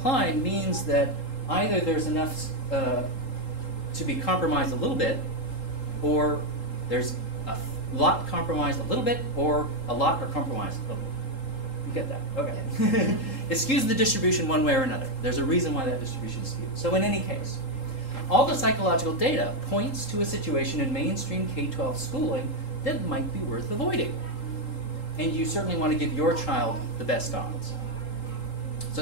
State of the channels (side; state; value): right; late; 3.8 ms